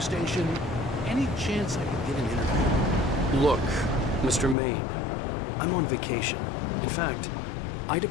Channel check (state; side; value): drops out; right; at 4.5 s